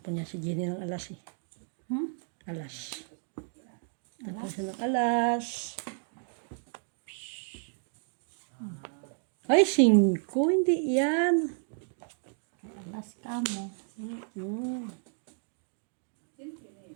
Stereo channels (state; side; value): silent; left; 56 dB below the other